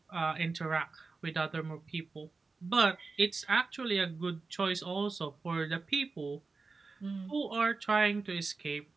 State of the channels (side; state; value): left; quieter; 4.1 dB